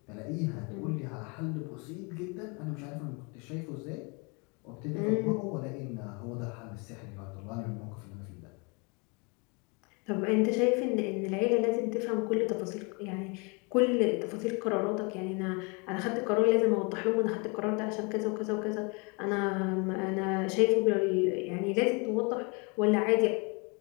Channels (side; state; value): right; quieter; 31.6 dB